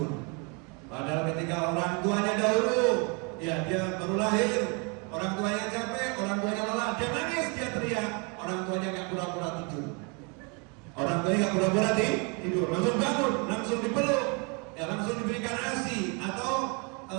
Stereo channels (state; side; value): quieter; left; 33.0 dB